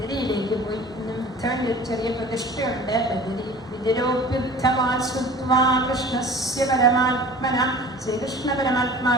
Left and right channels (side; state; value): both; normal; correlation 0.43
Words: പോയി. ഇന്നും ഉദ്ധവന്റെ ഒരു ചെറിയ പ്രതിഷ്ഠയുണ്ട് ബദരി. വിദുരോപ്യുദ്ധമാ കൃഷ്ണസ്യ പരമാത്മന, ശ്രീകൃഷ്ണ